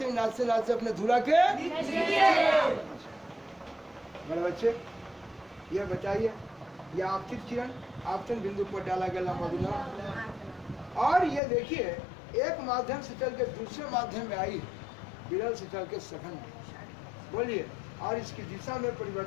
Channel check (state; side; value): drops out; right; at 11.4 s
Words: नाचते नाचते अपने धुरा के। मेरे बच्चे ये बताइए, ये आपतित किरण आपतन बिंदु पर डाला गया लंब अविलंब, और ये देखिए एक माध्यम से चल के दूसरे माध्यम में आई, विरल से चल के सघन में। बोलिए, और इसकी दिशा में